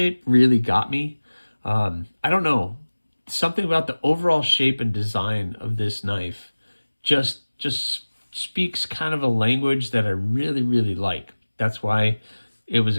really got me. I don't know. Something about the overall shape and design of this knife just speaks kind of a language that I really, really like. That's why it was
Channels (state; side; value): inverted; both; correlation -1.00